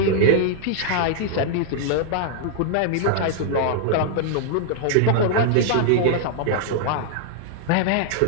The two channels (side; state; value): both; different; correlation -0.01